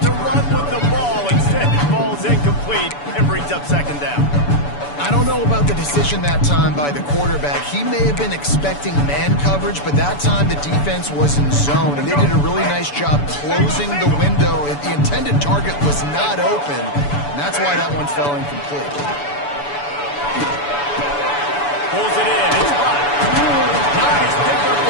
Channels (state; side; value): late; right; 6.9 ms